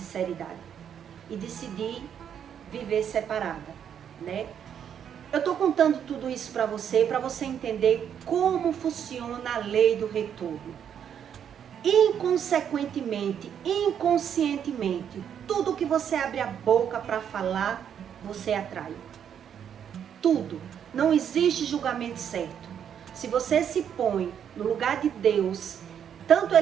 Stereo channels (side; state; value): left; quieter; 8.6 dB